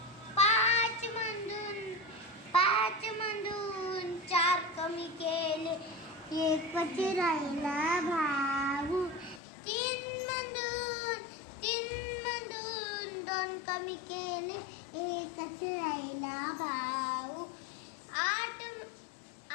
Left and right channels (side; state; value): right; drops out; at 9.4 s